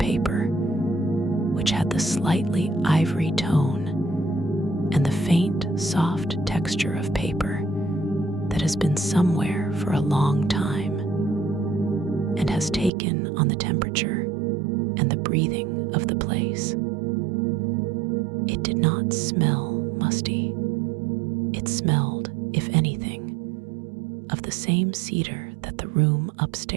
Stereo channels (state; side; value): drops out; left; at 12.9 s